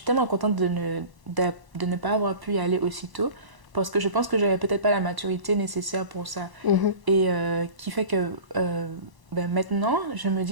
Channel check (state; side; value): late; left; 1.0 ms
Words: tellement contente de ne pas avoir pu y aller aussitôt parce que je pense que j'avais peut-être pas la maturité nécessaire pour ça. Et qui fait que... maintenant, je me